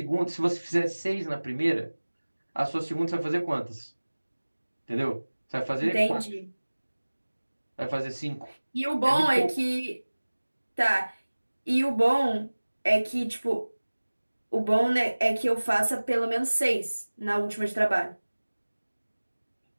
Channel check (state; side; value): inverted; both; correlation -1.00